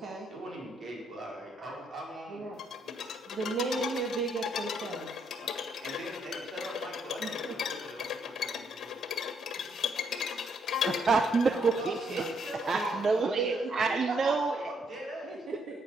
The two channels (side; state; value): both; normal; correlation 0.73